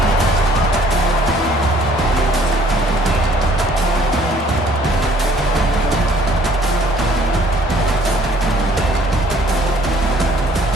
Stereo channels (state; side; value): normal; both; correlation 0.59